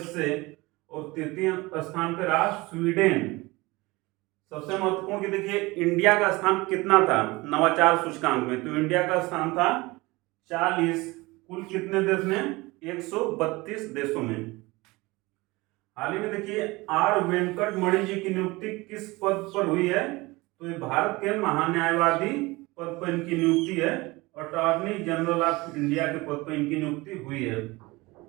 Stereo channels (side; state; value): left; quieter; 22.4 dB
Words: और तृतीय स्थान पे रहा स्वीडन। सबसे महत्वपूर्ण कि देखिए इंडिया का स्थान कितना था नवाचार सूचकांक में? तो इंडिया का स्थान था 40, कुल कितने देश में? 132 देशों में। हाल ही में देखिए आर वेंकट मणि जी की नियुक्ति किस पद पर हुई है? तो ये भारत के महान्यायवादी पद पर इनकी नियुक्ति है। अटॉर्नी जनरल ऑफ इंडिया के पद पर इनकी नियुक्ति हुई है।